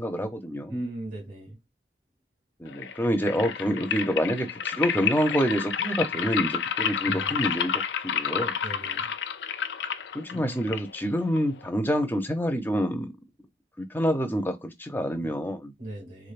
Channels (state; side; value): normal; both; correlation 0.64